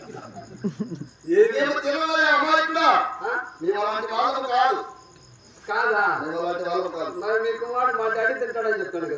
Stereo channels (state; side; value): identical; both; correlation 1.00